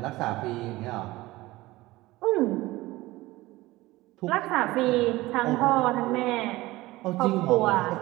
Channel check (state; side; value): quieter; left; 19.0 dB